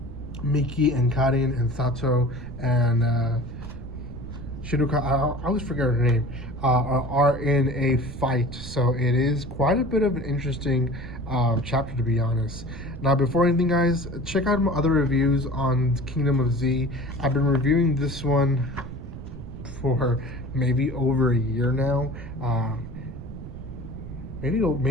Miki and Karin and Sato and Shinuka, I always forget her name, are in a fight. So it is quite a bit of an interesting chapter, to be honest. Now, before anything, guys, check out my other reviews on Kingdom of Z. I've been reviewing this one for maybe over a year now.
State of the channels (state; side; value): noise; right; rumble, 11 dB below the sound